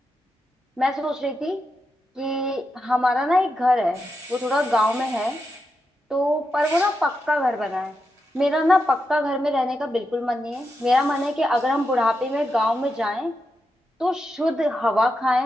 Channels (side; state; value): both; normal; correlation 0.86